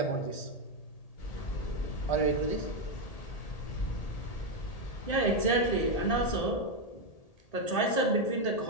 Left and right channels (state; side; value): late; right; 1.8 ms